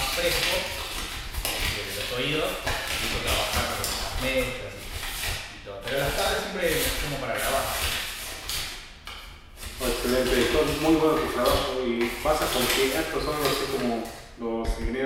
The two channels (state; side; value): identical; both; correlation 1.00